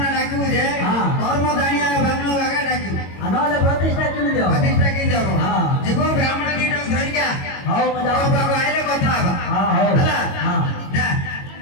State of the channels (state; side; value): late; right; 22 ms